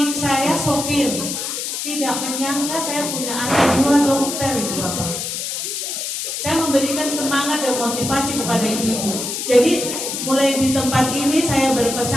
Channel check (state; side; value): noise; left; hiss, 4 dB below the sound